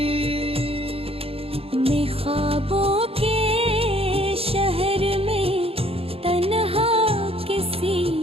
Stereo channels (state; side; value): late; left; 0.28 ms